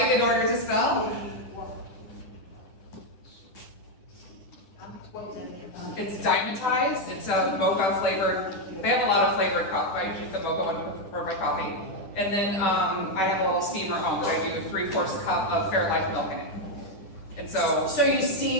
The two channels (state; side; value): late; right; 10 ms